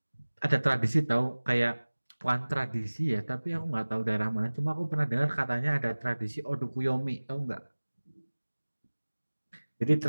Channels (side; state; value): both; inverted; correlation -1.00